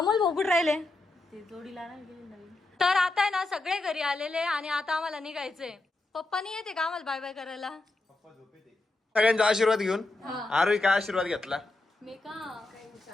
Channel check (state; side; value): quieter; right; 3.1 dB